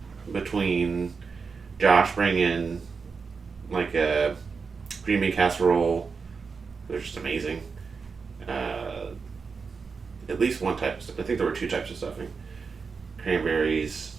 between Josh bringing like a green bean casserole. They're just amazing. At least one type of stuff. I think there were 2 types of stuffing. Cranberries,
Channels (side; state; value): left; quieter; 5.1 dB